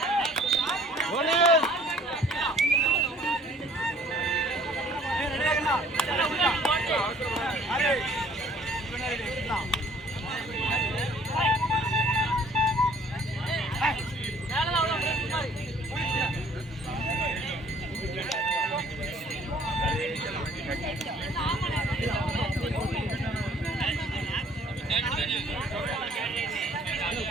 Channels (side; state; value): both; normal; correlation 0.56